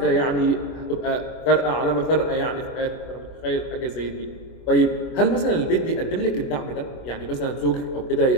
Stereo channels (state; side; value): late; right; 24 ms